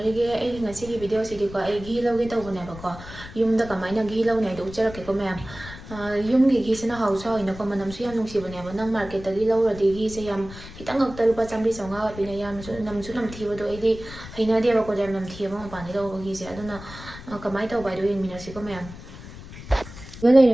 ay ngasigi video sidiko ay ghee lawge tawbanebako yumda kamaina ghee lawne do ucharakeko ma'am yumgi ghee sina hausa hoinako manamsu yam nungsiboneba nang market tagi lawradi ghee se yam khitang ngakta lupa 100-150 pina yam namsu namthibado aidi hainadebako yam namthibama mapani lawba ghee se aduna kamai tawbai do yengminasiko ma'am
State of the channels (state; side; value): noise; left; rumble, 14 dB below the sound